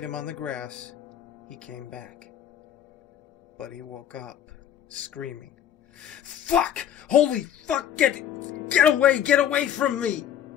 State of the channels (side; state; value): right; quieter; 10.1 dB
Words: him on the grass, he came back. But he woke up, screaming. "Fuck! Holy fuck! Get away from me!"